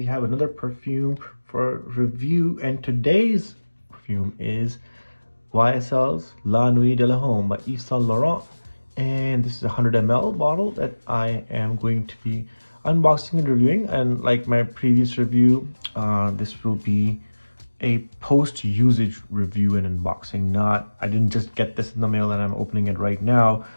have another perfume for review, and today's perfume is YSL's La Nuit De L'Homme by YvesSaintLaurent. And this is a 100 ml bottle that I am going to be unboxing and reviewing. And like my previous review, this will be a post-usage review and unboxing. I didn't just get this in the mail and I'm opening it right now.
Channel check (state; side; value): inverted; both; correlation -1.00